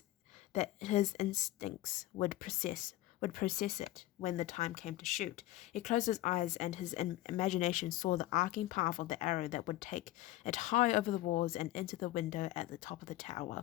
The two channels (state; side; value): quieter; right; 16.0 dB